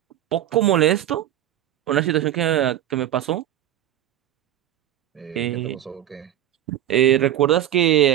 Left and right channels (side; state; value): left; quieter; 12.1 dB